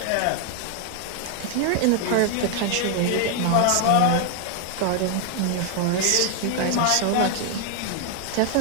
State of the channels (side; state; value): both; different; correlation 0.00